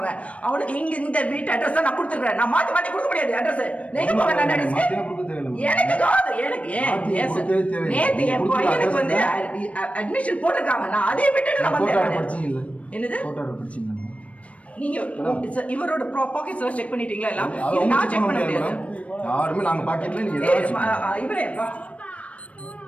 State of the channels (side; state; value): right; late; 0.064 ms